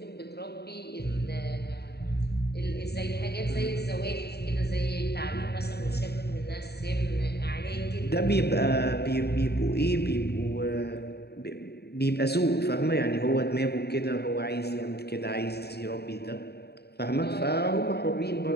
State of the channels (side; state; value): right; late; 0.47 ms